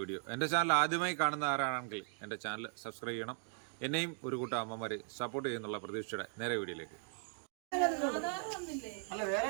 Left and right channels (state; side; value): silent; left; 52 dB below the other